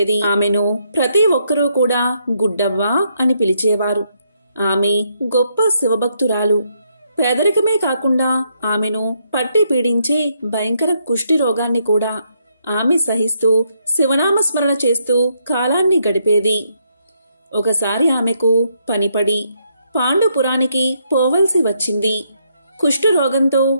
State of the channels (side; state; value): both; inverted; correlation -0.76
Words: ఆమెను ప్రతి ఒక్కరూ కూడా గుడ్డవ్వ అని పిలిచేవారు. ఆమె గొప్ప శివభక్తురాలు. పేదరికమే కాకుండా ఆమెను పట్టి పీడించే భయంకర కుష్టి రోగాన్ని కూడా ఆమె సహిస్తూ శివనామస్మరణ చేస్తూ కాలాన్ని గడిపేది. ఒకసారి ఆమెకు పనిపడి పాండుపురానికి పోవలసి వచ్చింది. కుష్టు రోగంతో